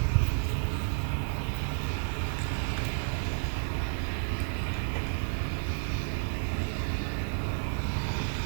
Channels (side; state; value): left; silent; 57 dB below the other